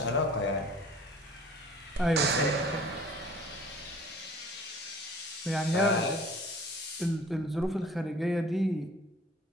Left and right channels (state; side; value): normal; both; correlation 0.49